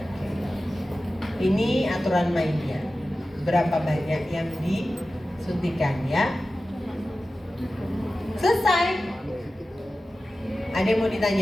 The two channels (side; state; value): both; normal; correlation 0.94